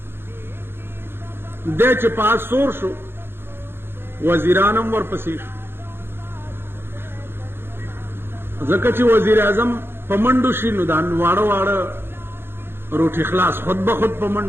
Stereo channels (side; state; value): left; late; 0.11 ms